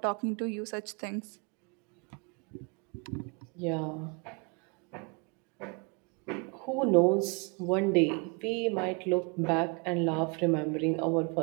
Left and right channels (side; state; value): left; quieter; 32.5 dB